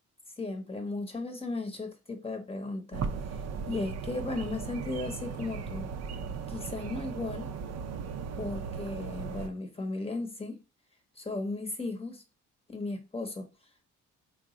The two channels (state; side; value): normal; both; correlation 0.56